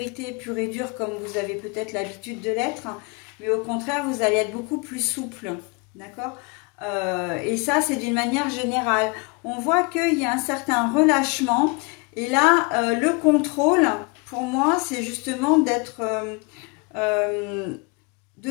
pure et dure comme vous avez peut-être l'habitude de l'être, mais au contraire, vous allez être beaucoup plus souple, d'accord ? Et ça, c'est d'une manière générale. On voit qu'il y a un certain relâchement. Et là, le contrôle, pour moi, c'est justement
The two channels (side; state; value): right; quieter; 30.4 dB